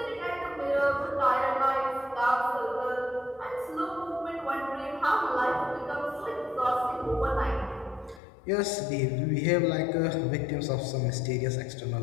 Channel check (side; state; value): right; drops out; at 8.2 s